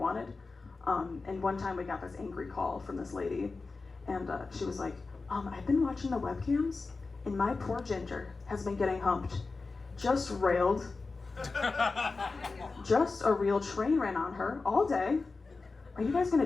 And one time we got this angry call from this lady. And she was like, I've been watching the webcams, and my poor Ginger has been getting humped. Just railed. Just a real train ran on her all day. Are you guys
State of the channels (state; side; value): quieter; right; 3.9 dB